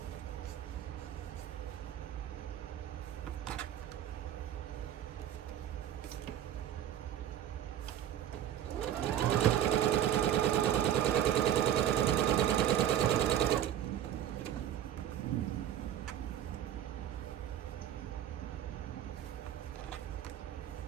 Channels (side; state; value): left; quieter; 10.8 dB